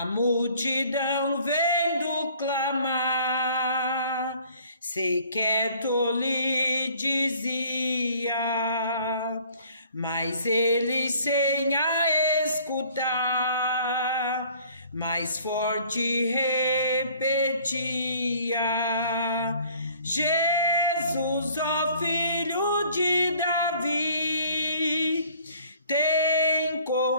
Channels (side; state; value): both; inverted; correlation -0.56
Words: multidão vendo clamar, sequer lhe dizia, mas ele sem a escutar, mais forte repetia: Jesus, ó filho de Davi, tem